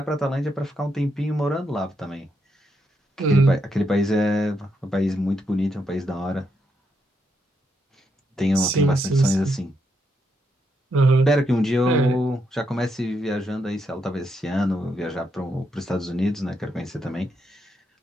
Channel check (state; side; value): normal; both; correlation 0.80